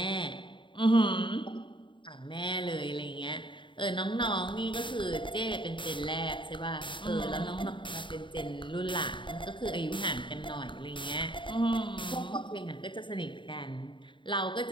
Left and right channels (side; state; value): right; late; 0.24 ms